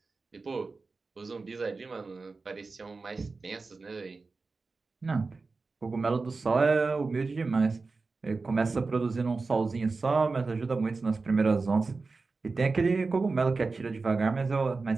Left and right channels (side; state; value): left; quieter; 4.0 dB